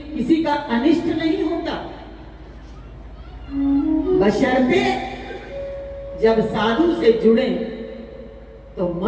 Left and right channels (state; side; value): identical; both; correlation 1.00